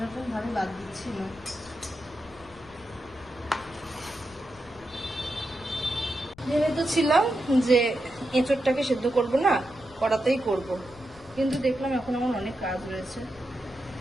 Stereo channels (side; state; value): left; noise; rumble, 24 dB below the sound